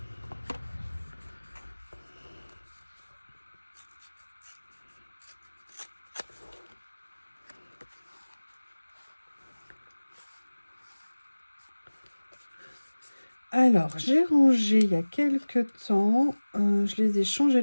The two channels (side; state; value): both; inverted; correlation -1.00